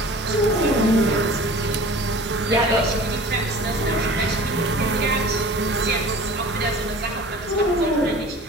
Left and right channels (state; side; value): normal; both; correlation 0.42